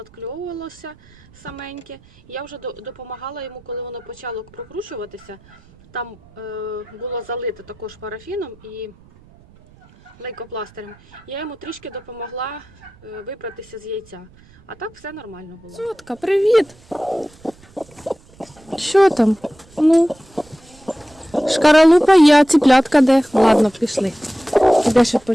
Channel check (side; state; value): right; noise; rumble, 26 dB below the sound